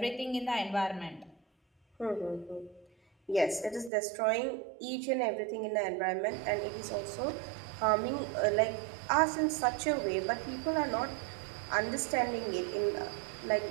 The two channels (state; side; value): drops out; left; at 3.9 s